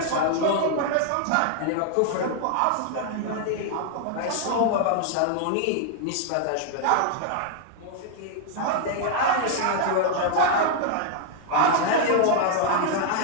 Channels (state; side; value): different; both; correlation 0.00